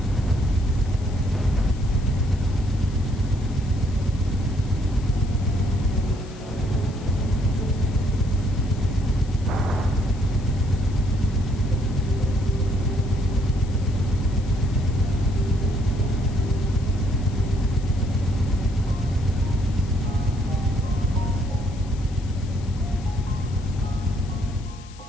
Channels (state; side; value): noise; left; hiss, 22 dB below the sound